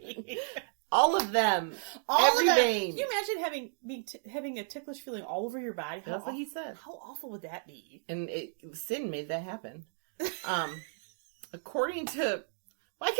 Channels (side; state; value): left; silent; digital silence